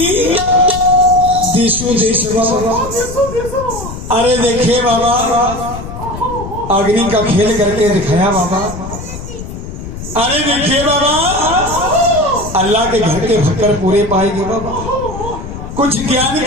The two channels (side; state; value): left; noise; rumble, 9 dB below the sound